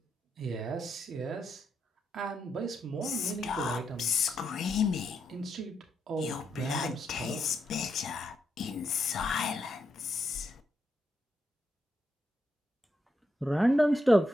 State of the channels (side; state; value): both; normal; correlation 0.81